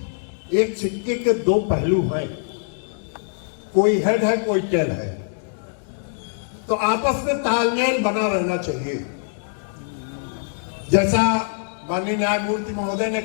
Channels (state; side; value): silent; right; digital silence